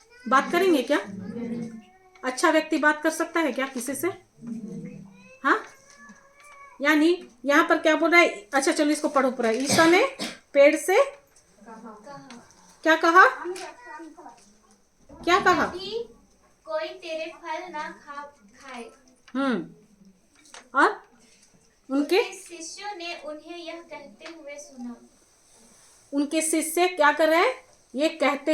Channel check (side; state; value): both; identical; correlation 1.00